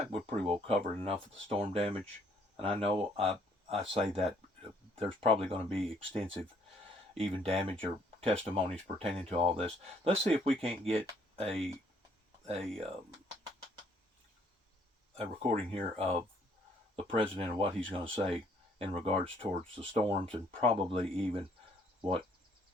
we've pretty well covered enough of the storm damage, and I know I say that there's probably going to be extensive even damage or testimonies pertaining to all this. Let's see if we can't get a recording here of the president and what he's going to say in regards towards the storms and probably even what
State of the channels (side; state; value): both; normal; correlation 0.65